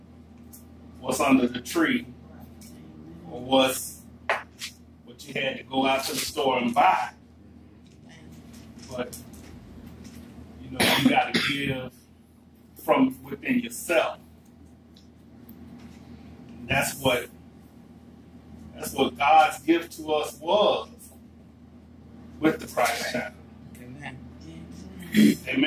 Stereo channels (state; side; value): identical; both; correlation 1.00